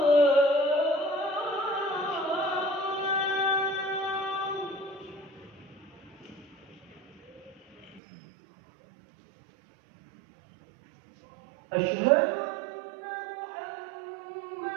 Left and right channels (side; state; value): left; drops out; at 8.0 s